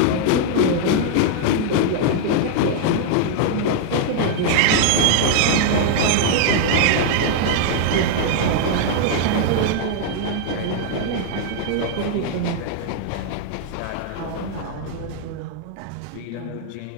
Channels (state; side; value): different; both; correlation -0.01